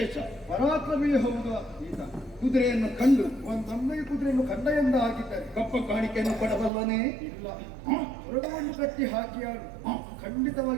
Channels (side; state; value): left; drops out; at 6.7 s